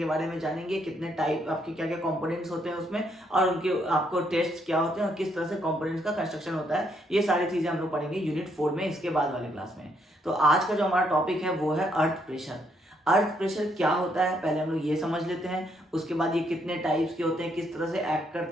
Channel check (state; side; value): normal; both; correlation 0.73